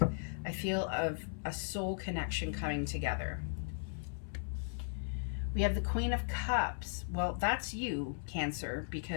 I feel of a soul connection coming together. We have the Queen of Cups. Well, that's you, Cancer,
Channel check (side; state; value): right; silent; 53 dB below the other